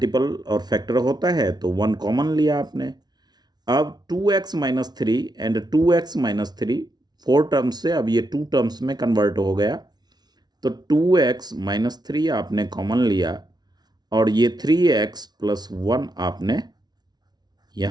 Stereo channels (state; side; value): late; left; 0.19 ms